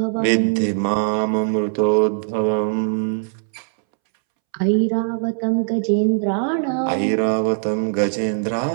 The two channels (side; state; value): left; silent; 65 dB below the other